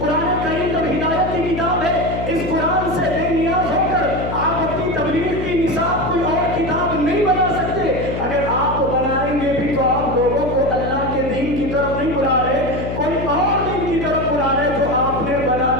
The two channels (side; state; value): left; noise; hum, 5 dB below the sound